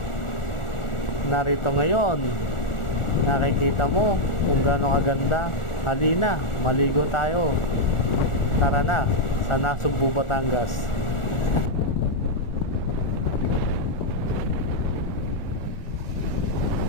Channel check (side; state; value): right; late; 1.4 ms